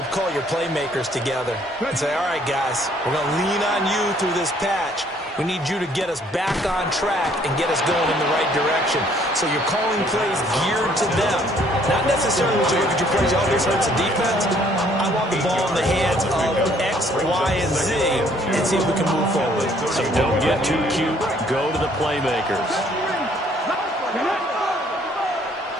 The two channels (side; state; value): both; normal; correlation 0.62